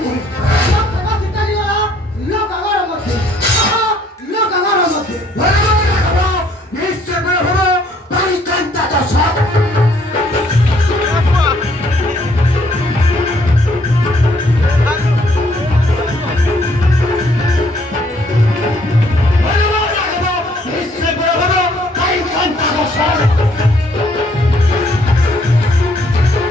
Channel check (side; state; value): both; normal; correlation 0.65